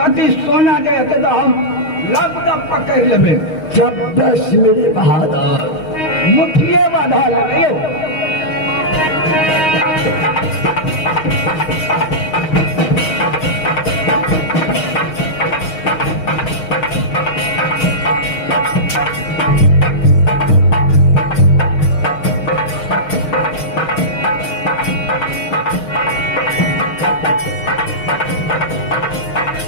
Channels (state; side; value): late; right; 6.3 ms